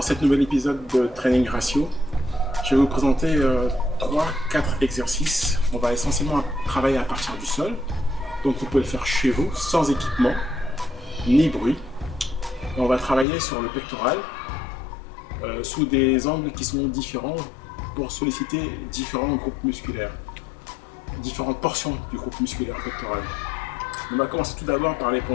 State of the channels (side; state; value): right; drops out; at 13.2 s